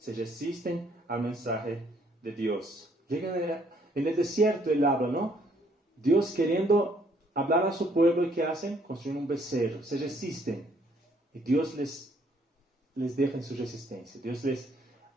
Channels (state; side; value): normal; both; correlation 0.66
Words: resisten al mensaje de Dios. Llegan en el desierto, él habla, ¿no? Dios queriendo hablar a su pueblo, ¿y qué hacen? Construyen un becerro, se resisten. Y Dios les deja en su resistencia. Dios les